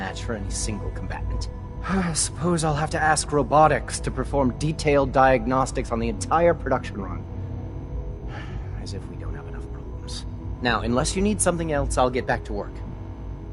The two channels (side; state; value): both; identical; correlation 1.00